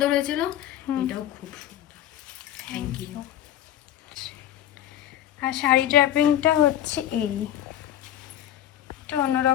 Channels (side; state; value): right; quieter; 11.8 dB